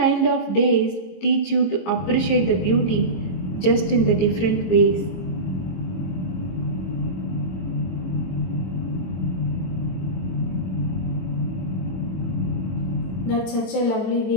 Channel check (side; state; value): right; late; 22 ms